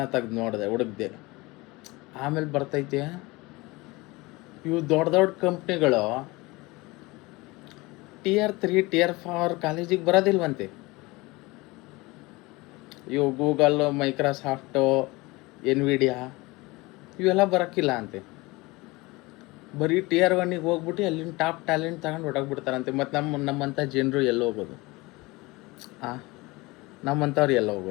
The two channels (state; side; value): quieter; right; 22.8 dB